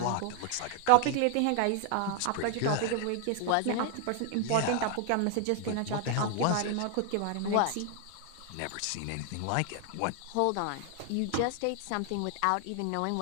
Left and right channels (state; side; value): different; both; correlation 0.00